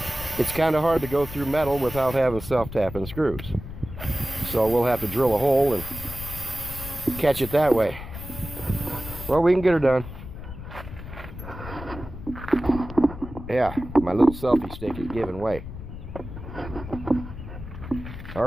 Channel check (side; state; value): left; noise; rumble, 11 dB below the sound